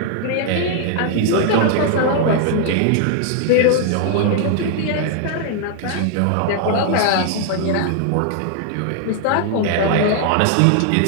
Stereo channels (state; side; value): different; both; correlation 0.00